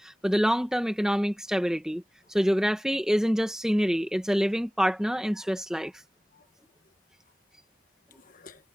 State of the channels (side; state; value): both; normal; correlation 0.98